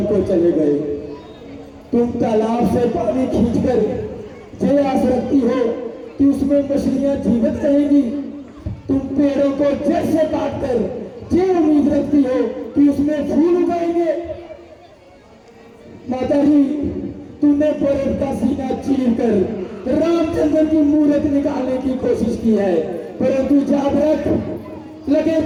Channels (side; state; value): both; identical; correlation 1.00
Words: को चले गए। तुम तालाब से पानी खींचकर ये आस रखती हो कि उसमें मछलियां जीवित रहेंगी, तुम पेड़ों को जड़ से काटकर ये उम्मीद रखती हो कि उसमें फूल उगाएंगे। माता जी, तुमने भरत का सीना चीर कर रामचंद्र की मूर्त निकालने की कोशिश की है, परंतु याद रख, लगे